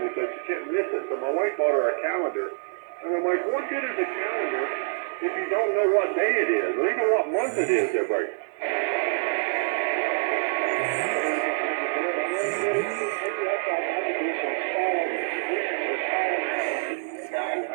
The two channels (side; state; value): left; silent; digital silence